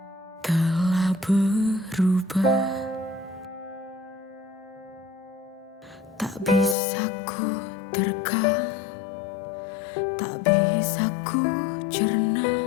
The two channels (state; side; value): drops out; right; at 6.8 s